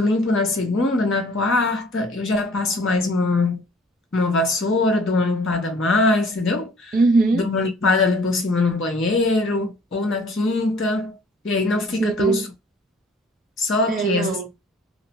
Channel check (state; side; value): normal; both; correlation 0.54